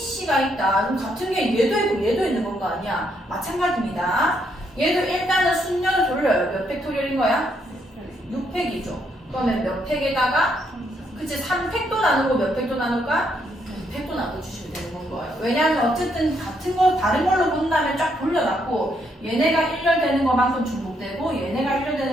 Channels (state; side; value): normal; both; correlation 0.74